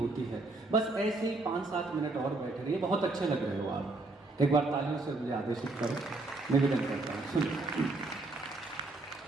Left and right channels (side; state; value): left; quieter; 3.1 dB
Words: है। बस ऐसे ही 5-7 मिनट और बैठे रहिए, बहुत अच्छे लग रहे हो आप। एक बार तालियों से मुझे आदेशित करो, निवेदन करता हूँ, सुनिए।